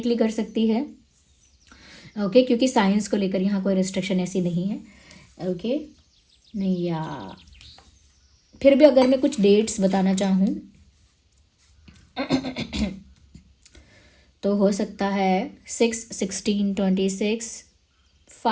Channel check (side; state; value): both; identical; correlation 1.00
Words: कर सकती है। ओके, क्योंकि साइंस को लेकर यहाँ कोई रिस्ट्रिक्शन ऐसी नहीं है। ओके, नहीं, या फिर भी अगर मैं कुछ डेट्स बताना चाहूँ तो हो सकता है 6/16/26,